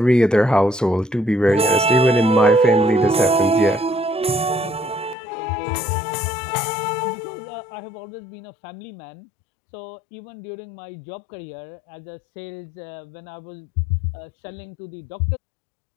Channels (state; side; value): drops out; right; at 5.2 s